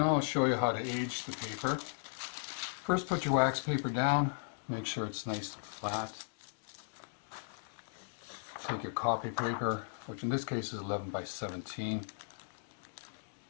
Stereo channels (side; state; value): right; silent; digital silence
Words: I'll show you how to age the paper. First, put your wax paper down, make sure it's nice and flat. Take your copy paper, which in this case is 11 by 17.